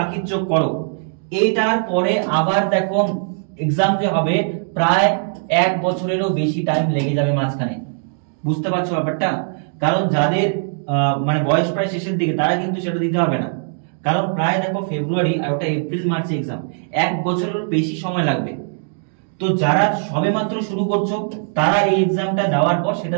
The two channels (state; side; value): silent; left; digital silence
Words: চোখ করো। এইটার পরে আবার দেখো এক্সাম যে হবে প্রায় 1 বছরেরও বেশি টাইম লেগে যাবে মাঝখানে। বুঝতে পারছো ব্যাপারটা? কারণ যাদের মানে বয়স প্রায় শেষের দিকে তারা কিন্তু সেটা দিতে হবে না, কারণ প্রায় দেখো ফেব্রুয়ারি আর ওটা এপ্রিল মার্চে এক্সাম, 1 বছরের বেশি সময় লাগবে। তো যারা সবে মাত্র শুরু করছো তারা এই এক্সামটা দেওয়ার পর